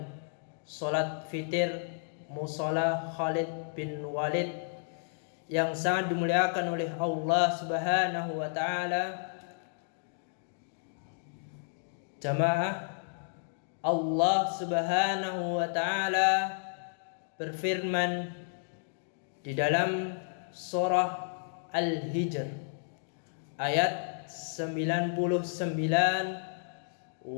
salat fitir Mushola Khalid bin Walid yang sangat dimuliakan oleh Allah Subhanahu wa taala. Jamaah, Allah Subhanahu wa taala berfirman di dalam surah Al-Hijr ayat 99,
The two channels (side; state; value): right; silent; digital silence